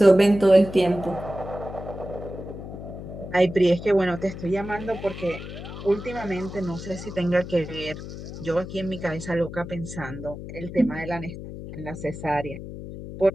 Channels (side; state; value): left; noise; hum, 10 dB below the sound